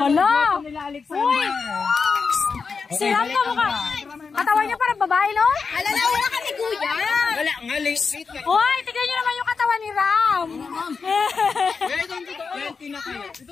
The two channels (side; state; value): right; quieter; 5.1 dB